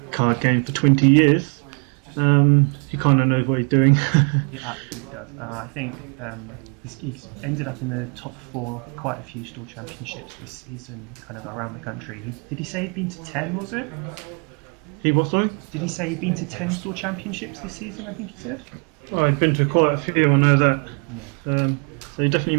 card games for 20 years, he kind of knows what he's doing. He absolutely does. I think he's ended up in the top 4 of quite a few store championships this season, kind of around the country. Did he say he'd been to 10, was it? He what, sorry? Did he say he'd been to 10 store championships this season, I think he said? Oh, I've been to quite a few, I know that. Yeah. So he definitely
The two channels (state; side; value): quieter; left; 38.6 dB